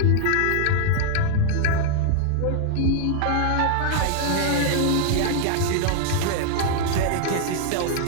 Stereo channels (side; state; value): both; different; correlation 0.00